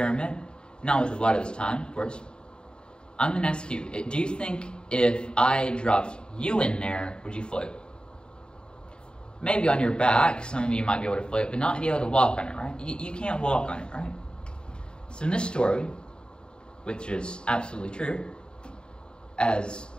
not with a lot of this time, of course. I'm going to ask you, do you think if I dropped you in there, would you float? Maybe on your back, some of you might be able to float, but not be able to walk on it, right? You can't walk on it, right? So in this story, which is absolutely true, as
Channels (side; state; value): right; late; 0.050 ms